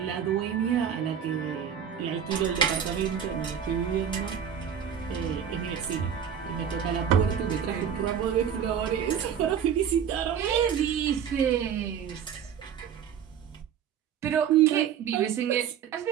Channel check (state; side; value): quieter; left; 8.3 dB